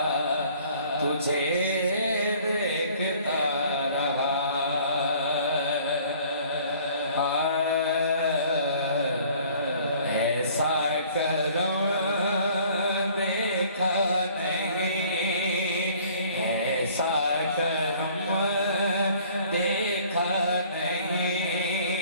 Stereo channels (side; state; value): both; inverted; correlation -0.54